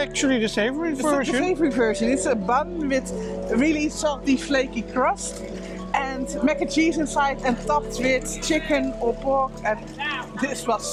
the savory version. The savory version. It's a bun with really salty, flaky crust, and mac and cheese inside, and topped with chicken or pork. And this was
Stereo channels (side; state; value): both; identical; correlation 1.00